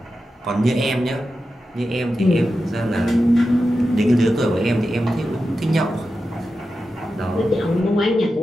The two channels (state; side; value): normal; both; correlation 0.91